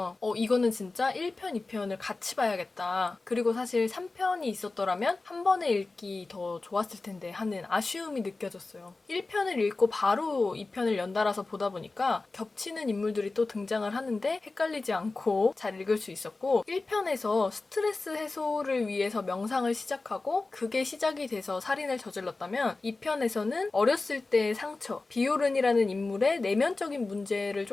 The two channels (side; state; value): right; quieter; 3.5 dB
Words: 이거는 진짜 1편, 2편을 같이 봐야겠다. 그리고 사실 3편이 있었더라면 한 번에 읽기 더 좋았을 텐데 하는 아쉬움이 느껴졌어요. 1편을 읽고 바로 2편을 연달아서 보다 보니까 겹치는 인물들이 또 등장을 하는데 헷갈리지 않고 잘 읽을 수 있었고 1편에서 스트레스 해소를 위해서 명상을 시작하고 그게 시작이 돼서 살인을 저질렀다면 2편에서는 어렸을 때의 상처, 비오른이라는 인물의 내면적인 문제를